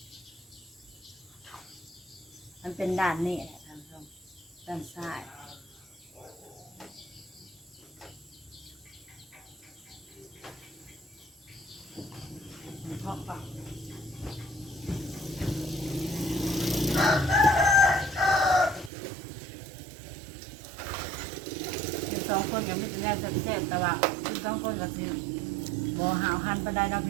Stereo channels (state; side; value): drops out; left; at 18.9 s